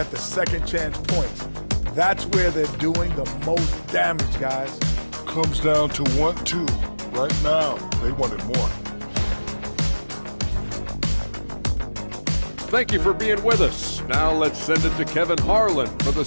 the second chance points. That's where they're doing the most damage, guys. Comes down to 1-2. Right now, they wanted more. Thank you for being with us. Now let's send it to Kevin Harlan for the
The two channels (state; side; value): inverted; both; correlation -1.00